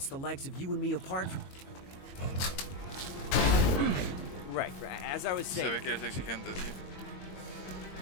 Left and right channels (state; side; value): late; right; 22 ms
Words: the likes of you and me apart from... Right, as I was saying. Se ve que eres exigente, tío.